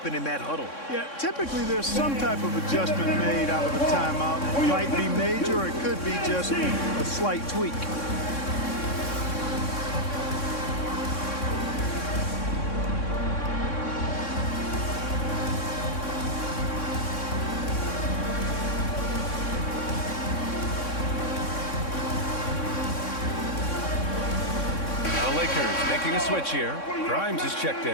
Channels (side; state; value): right; late; 3.6 ms